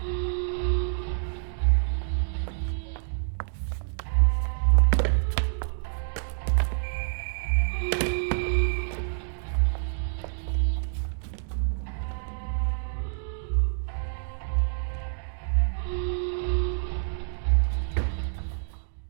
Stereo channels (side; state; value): left; silent; digital silence